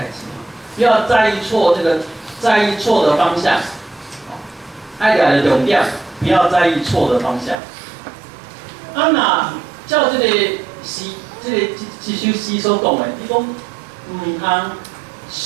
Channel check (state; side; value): drops out; left; at 7.6 s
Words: 志，不要在意错的方向，爱来的重点，不要在意错的方向。啊，那照这首诗所讲的，你讲唔通